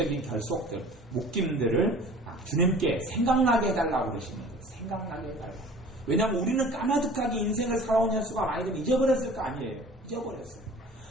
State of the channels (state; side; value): normal; both; correlation 0.45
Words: 결속들, 묶임들을 주님께 생각나게 해달라고 그러시는 거예요. 생각나게 해달라고. 왜냐하면 우리는 까마득하게 인생을 살아온 횟수가 많이 되면 잊어버렸을 거 아니에요. 잊어버렸어요.